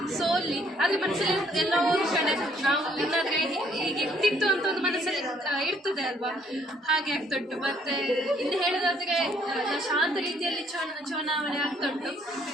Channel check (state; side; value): normal; both; correlation 0.65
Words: ಸೋಲಿ ಆದ್ರೆ ಮನಸ್ಸಲ್ಲಿ ಎಲ್ಲ ಒಂದು ಕಡೆ ನಾವು ಏನಾದ್ರೆ ಈಗ ಇರ್ತಿತ್ತು ಅಂತ ಒಂದು ಮನಸ್ಸಲ್ಲಿ ಇರ್ತದೆ ಅಲ್ವಾ, ಹಾಗೆ ಆಗ್ತಾ ಉಂಟು. ಮತ್ತೆ ಇನ್ನು ಹೇಳೋದಾದ್ರೆ ಶಾಂತ ರೀತಿಯಲ್ಲಿ ಚುನಾವಣೆ ಆಗ್ತಾ ಉಂಟು